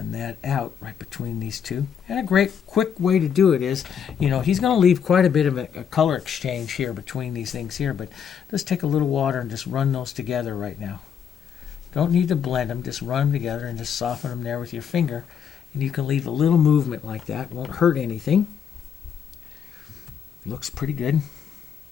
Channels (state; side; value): quieter; right; 7.8 dB